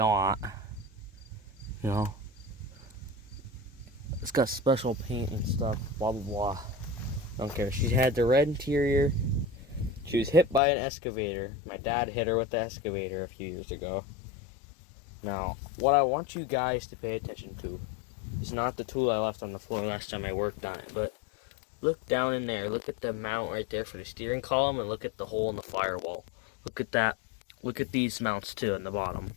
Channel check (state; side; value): drops out; right; at 10.6 s